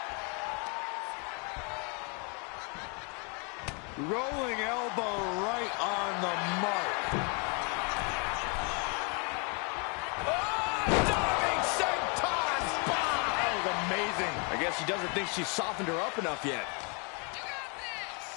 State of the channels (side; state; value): right; quieter; 34.8 dB